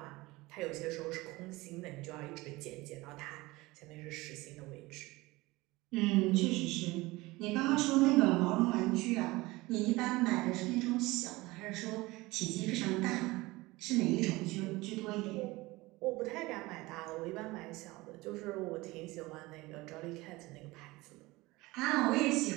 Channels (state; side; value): quieter; left; 21.0 dB